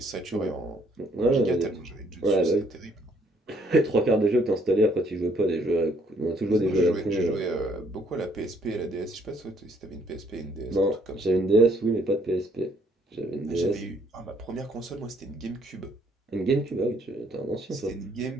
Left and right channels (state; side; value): normal; both; correlation 0.66